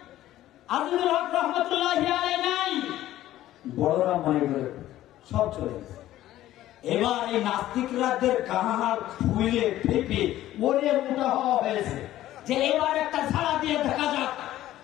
আজিজুল হক রহমতুল্লাহি আলাইহি নাই, বড়রা মনে করে সব চলে গেছে। এবার এই নাস্তিকরাদের কাহার ফুলে ফেপে ওরে মোটা হওয়া হয়েছে যে এবার একটা ঝাড়া দিয়ে দেখা যাক।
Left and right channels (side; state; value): right; quieter; 14.0 dB